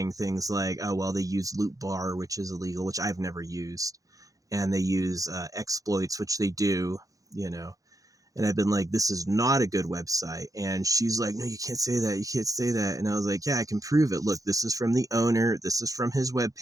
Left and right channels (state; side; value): late; left; 0.17 ms